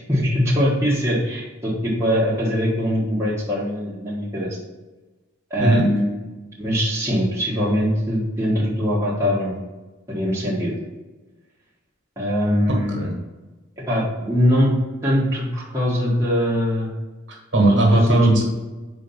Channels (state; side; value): normal; both; correlation 0.68